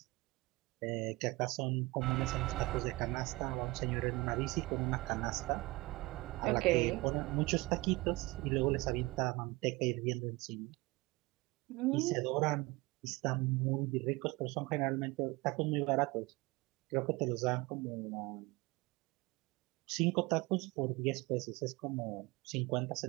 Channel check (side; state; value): left; quieter; 22.3 dB